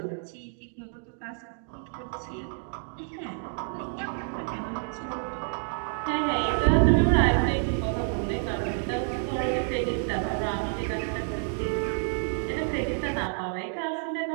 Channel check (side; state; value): left; silent; 59 dB below the other